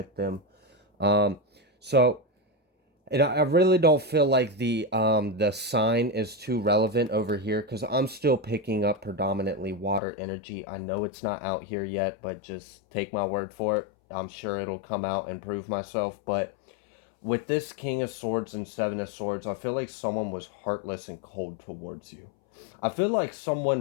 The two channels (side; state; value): right; drops out; at 10.0 s